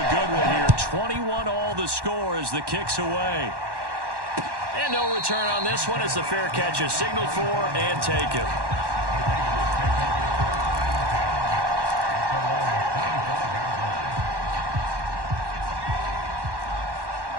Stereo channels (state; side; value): late; left; 1.1 ms